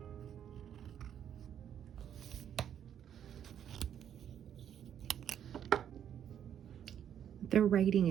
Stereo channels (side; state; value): left; quieter; 9.4 dB